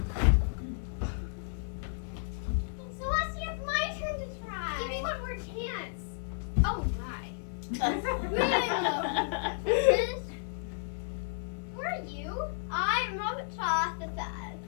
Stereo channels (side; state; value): right; silent; 56 dB below the other